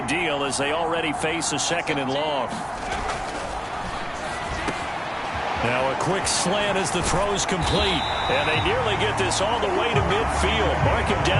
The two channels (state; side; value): identical; both; correlation 1.00